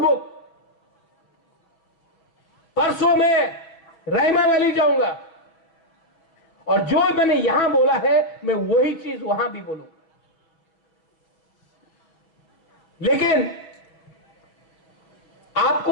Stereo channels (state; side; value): late; right; 6.1 ms